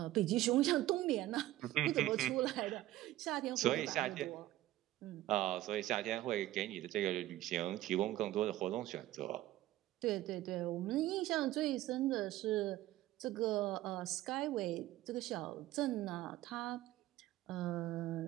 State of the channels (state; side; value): quieter; left; 15.5 dB